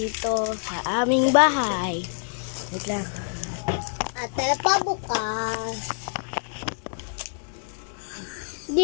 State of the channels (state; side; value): silent; right; 61 dB below the other